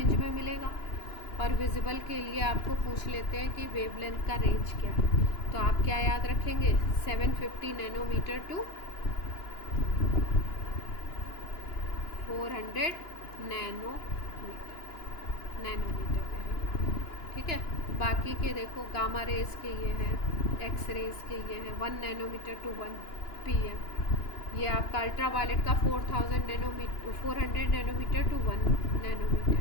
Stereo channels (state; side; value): late; right; 2.9 ms